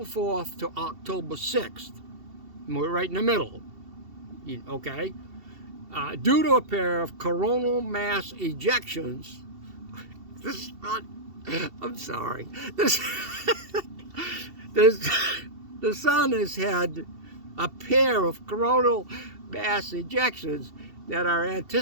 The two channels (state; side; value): late; left; 2.7 ms